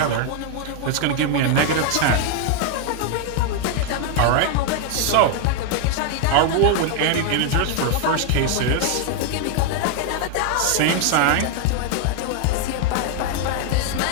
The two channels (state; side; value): different; both; correlation 0.00